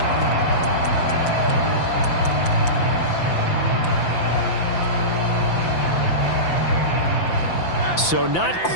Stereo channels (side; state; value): right; late; 5.9 ms